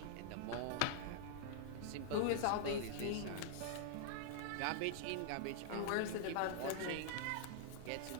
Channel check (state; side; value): different; both; correlation -0.01